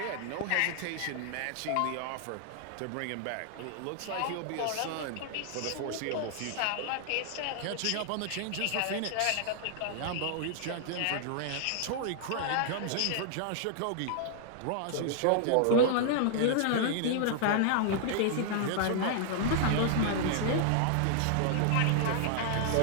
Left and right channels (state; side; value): different; both; correlation -0.01